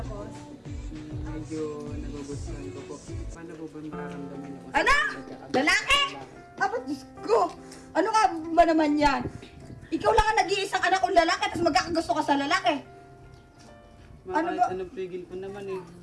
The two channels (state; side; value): identical; both; correlation 1.00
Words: Medyo nagugustuhan ko po. Paano po ba mararamdaman niyo? Anak! Lalaki! Apat, Diyos ko! Ano ka ba naman yan? Ikaw lang ang nag-iisang anak kong lalaki tapos magkakagusto ka sa lalaki. Ano ba? Anong pigil ko naman eh.